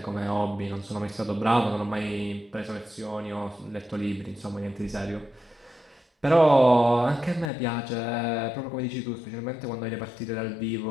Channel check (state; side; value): drops out; right; at 7.5 s